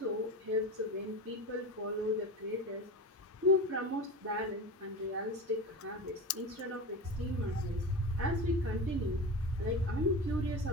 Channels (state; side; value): normal; both; correlation 0.26